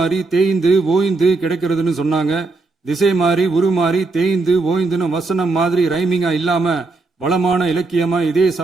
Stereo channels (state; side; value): quieter; left; 3.5 dB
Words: தேய்ந்து ஓய்ந்து கிடைக்கிறதுன்னு சொன்னாங்க. திசை மாறி உருமாறி தேய்ந்து ஓய்ந்துன்னு வசனம் மாதிரி ரைமிங்கா இல்லாம வளமான இலக்கியமா இதே